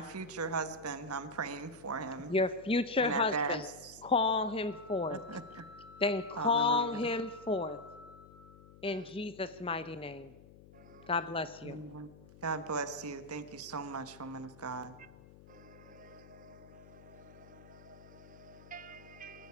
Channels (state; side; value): noise; left; hum, 20 dB below the sound